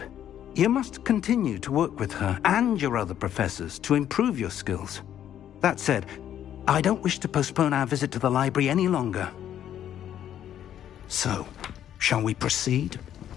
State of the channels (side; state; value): right; quieter; 10.6 dB